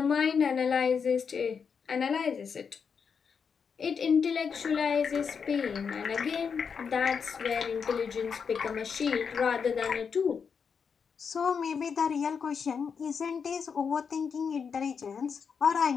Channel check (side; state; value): right; quieter; 6.2 dB